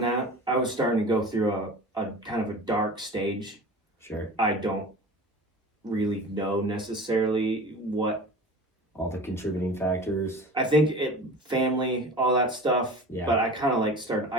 that. I was starting to go through a kind of a dark stage. Sure. I don't really know necessarily what all the contributing factors. I think family, all that stuff. Yeah. But I kind of started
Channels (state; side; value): normal; both; correlation 0.37